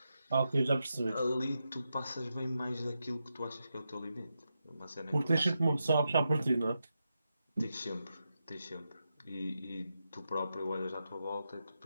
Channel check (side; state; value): both; inverted; correlation -0.87